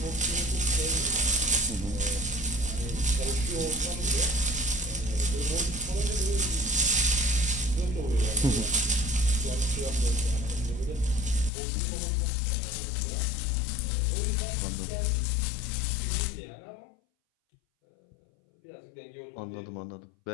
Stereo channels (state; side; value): drops out; right; at 11.5 s